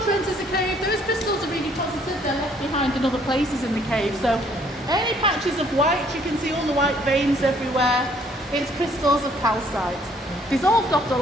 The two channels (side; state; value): both; normal; correlation 0.63